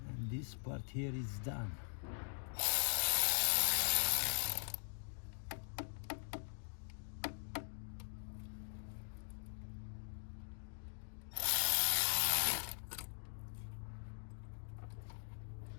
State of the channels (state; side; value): silent; right; digital silence